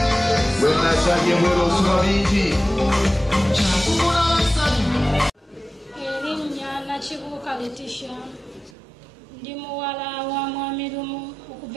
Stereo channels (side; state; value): left; drops out; at 8.8 s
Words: When I said you were also Elinya Nachibuka Letitia. Ndi muwala wa mwami Lumu